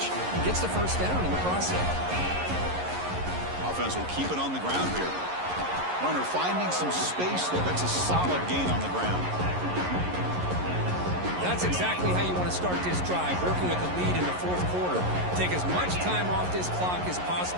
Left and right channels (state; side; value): late; left; 11 ms